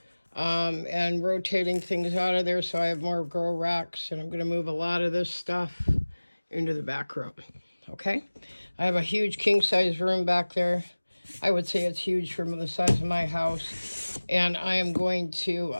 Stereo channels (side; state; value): both; inverted; correlation -1.00